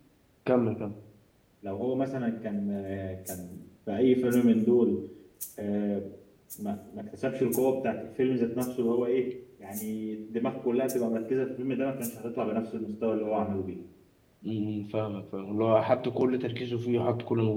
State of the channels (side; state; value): both; identical; correlation 1.00